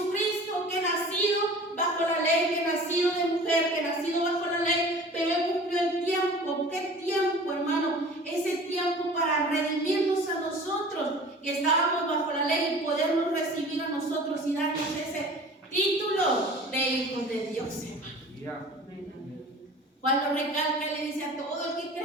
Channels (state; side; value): normal; both; correlation 0.43